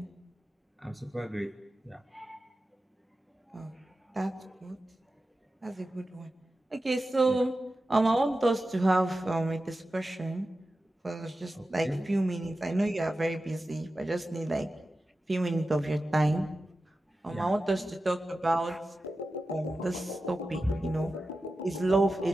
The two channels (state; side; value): normal; both; correlation 0.93